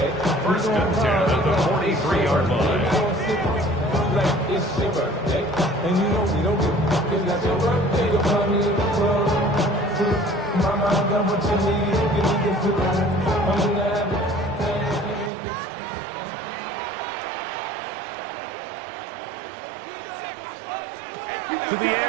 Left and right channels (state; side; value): drops out; left; at 15.3 s